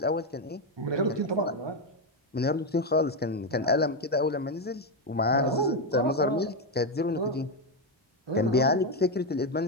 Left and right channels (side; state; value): both; normal; correlation 0.07